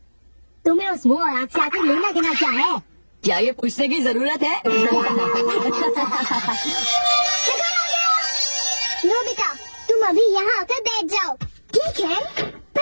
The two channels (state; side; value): inverted; both; correlation -1.00